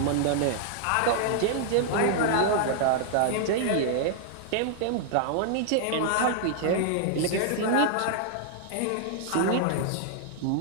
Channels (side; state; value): both; different; correlation -0.01